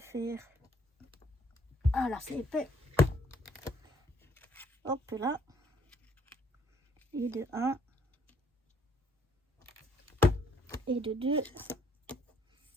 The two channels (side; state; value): both; normal; correlation 0.65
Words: Ah là, c'est épais. Hop là. Et de 1. Et de 2.